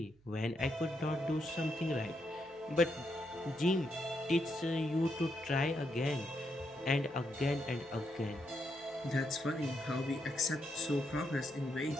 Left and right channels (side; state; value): right; noise; hum, 29 dB below the sound